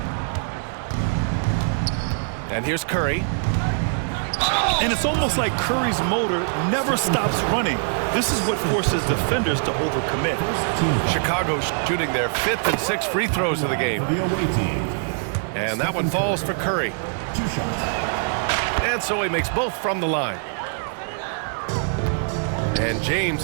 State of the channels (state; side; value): silent; left; digital silence